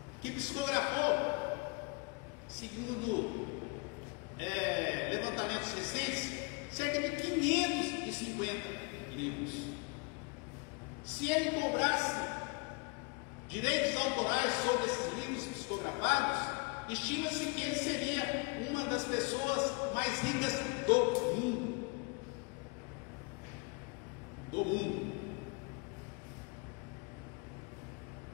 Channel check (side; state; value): right; quieter; 30.5 dB